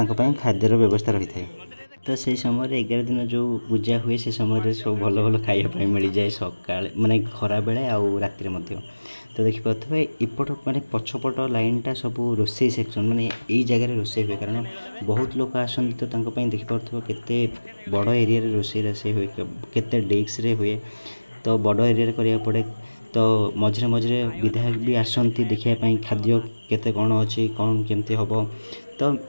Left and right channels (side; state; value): both; inverted; correlation -1.00